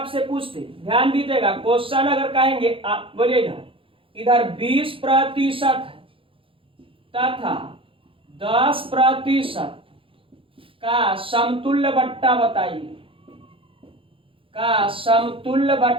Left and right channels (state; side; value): late; left; 0.26 ms